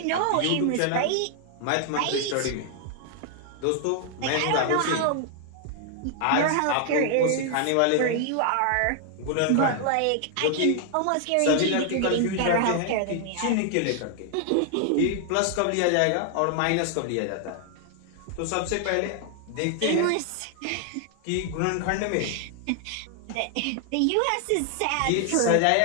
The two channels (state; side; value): different; both; correlation 0.00